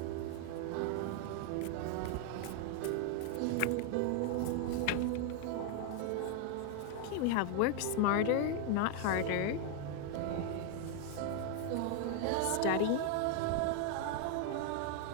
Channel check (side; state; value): both; different; correlation 0.00